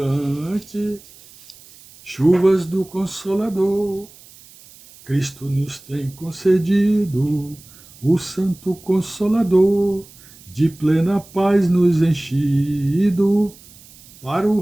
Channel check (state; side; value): noise; right; hiss, 23 dB below the sound